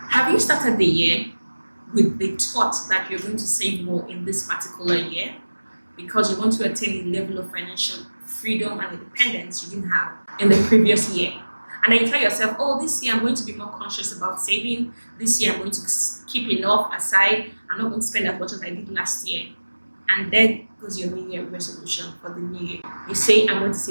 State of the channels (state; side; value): inverted; both; correlation -1.00